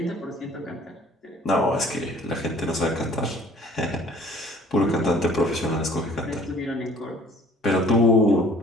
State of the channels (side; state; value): both; normal; correlation 0.53